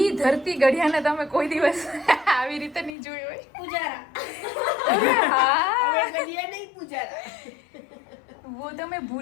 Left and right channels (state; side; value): drops out; right; at 3.0 s